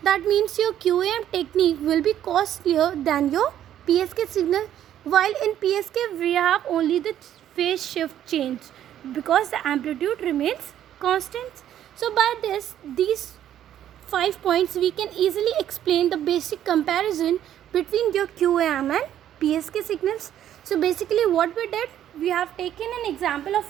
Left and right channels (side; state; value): left; quieter; 11.1 dB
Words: That means your QAM technique will be costlier than your PSK signal. While in PSK we have only the phase shift change because the amplitude remains constant. So by these 5 points we can easily explain the basic comparison between your QAM and PSK signals. So basically what we did, we have taken an example of